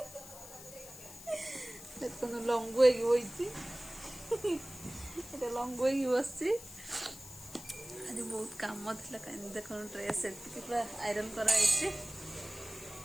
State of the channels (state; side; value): noise; left; hiss, 15 dB below the sound